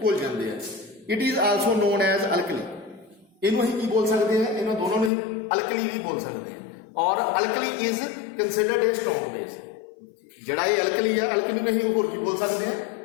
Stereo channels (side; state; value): right; drops out; at 5.1 s